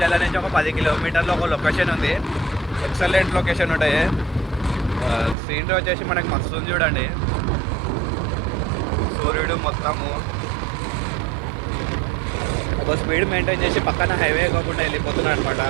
నుంచి ఒక 10 కిలోమీటర్లో ఒక లొకేషన్ ఉంది. ఎక్సలెంట్ లొకేషన్ ఉంటాయి. సీనరీ వచ్చేసి మనకి మస్తు ఉంది చూడండి. సూర్యుడు మొత్తము ఒక స్పీడ్ మెయింటైన్ చేసి పక్కన హైవే కాకుండా వెళ్ళిపోతున్నాడు అనమాట.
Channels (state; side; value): drops out; left; at 5.4 s